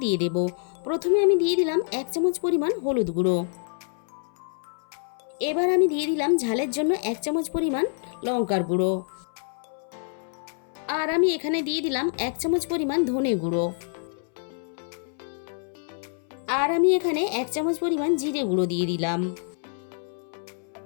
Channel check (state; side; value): silent; right; 61 dB below the other